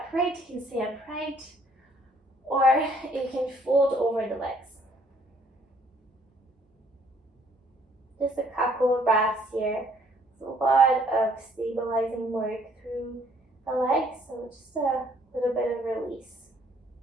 you can stay upright, or you can fold over the legs. Just a couple of breaths here. There's a lot of stabilizing work through the legs, so just a little bit of release.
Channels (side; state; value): both; normal; correlation 0.63